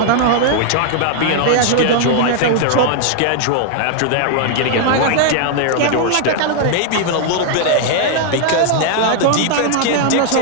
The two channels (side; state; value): both; different; correlation -0.01